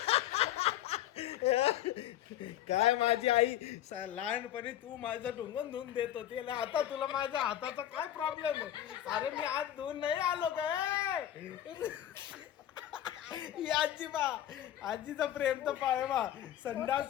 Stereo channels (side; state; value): right; quieter; 12.0 dB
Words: काय माझी आई लहानपणी तू माझं ढुंगून धुवून देत होती, आता तुला माझ्या हाताचा काय प्रॉब्लेम आहे? अरे मी आज धुवून नाही आलो काय. ही आजी बा, आजीचा प्रेम तर पाय बा.